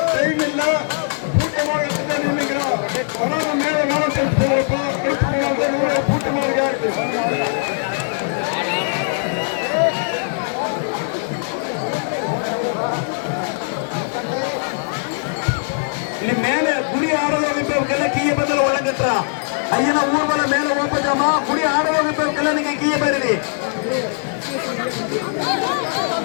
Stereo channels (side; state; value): right; silent; digital silence